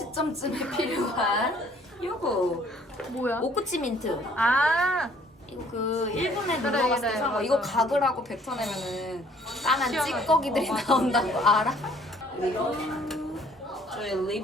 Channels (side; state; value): both; normal; correlation 0.59